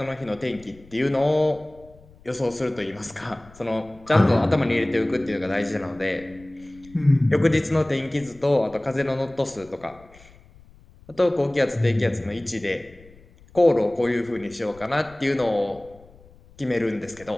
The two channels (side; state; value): left; noise; rumble, 24 dB below the sound